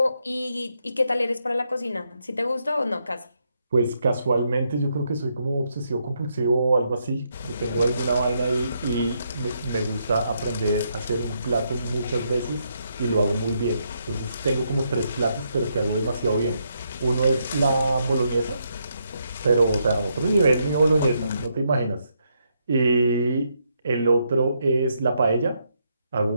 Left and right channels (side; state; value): both; inverted; correlation -0.78